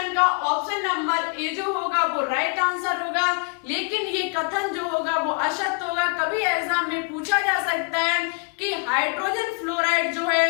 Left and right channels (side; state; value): right; quieter; 35.0 dB